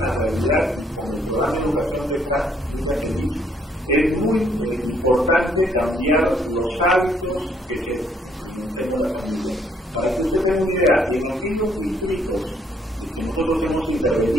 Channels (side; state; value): both; normal; correlation 0.68